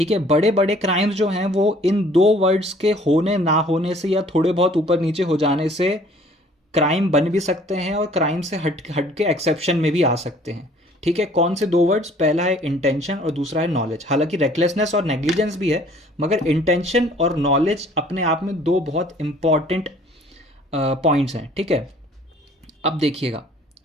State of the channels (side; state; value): both; normal; correlation 0.55